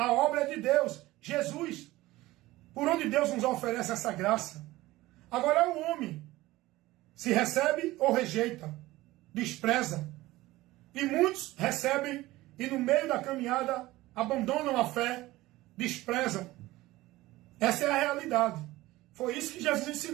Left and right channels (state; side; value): quieter; left; 18.1 dB